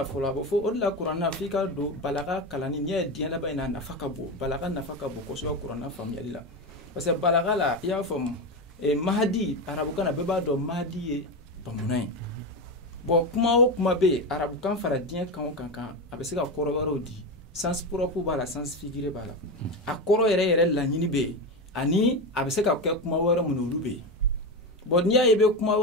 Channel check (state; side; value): normal; both; correlation 0.17